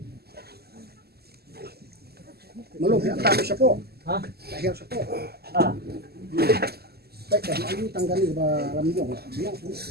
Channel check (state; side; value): late; left; 0.46 ms